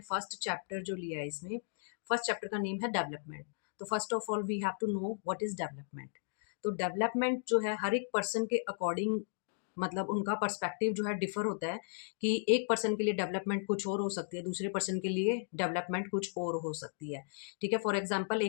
फर्स्ट चैप्टर जो लिया है, इसमें फर्स्ट चैप्टर का नेम है डेवलपमेंट। तो first of all we have to know what is development. तो डेवलपमेंट जो है हर एक पर्सन के अकॉर्डिंग, मतलब उनका पर्सपेक्टिव जो है डिफर होता है कि एक पर्सन के लिए डेवलपमेंट कुछ और हो सकती है, दूसरे पर्सन के लिए डेवलपमेंट कुछ और हो सकती है। ठीक है, फॉर एग्जांपल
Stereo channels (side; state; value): right; silent; digital silence